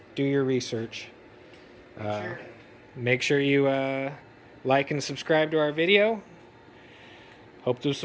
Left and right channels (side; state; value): both; identical; correlation 1.00